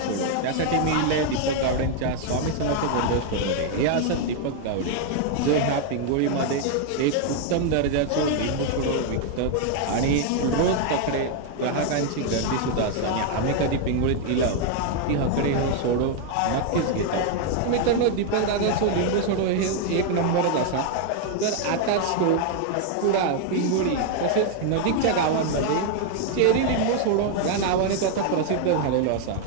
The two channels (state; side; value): different; both; correlation 0.00